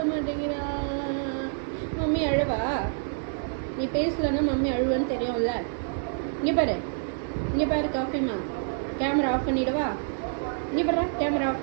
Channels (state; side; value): silent; left; 60 dB below the other